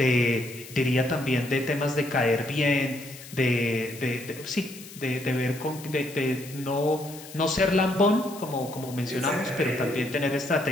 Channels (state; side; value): noise; left; hiss, 16 dB below the sound